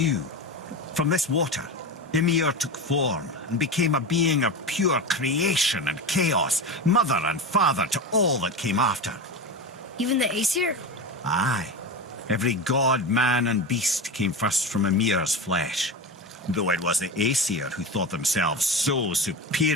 From this water, Ymir took form and became a being of pure creation and chaos, mother and father to all that came after. Even the Aesir? Aye. Every god, man and beast came first from Ymir's flesh. Though it was the Aesir who thought themselves so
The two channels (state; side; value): normal; both; correlation 0.24